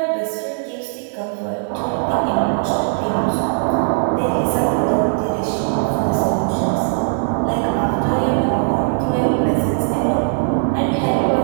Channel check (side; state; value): left; silent; digital silence